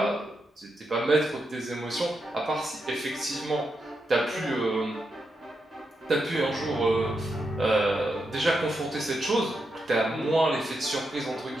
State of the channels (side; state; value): both; normal; correlation 0.84